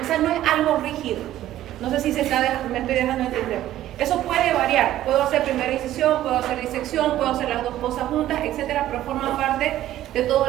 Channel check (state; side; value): quieter; left; 13.4 dB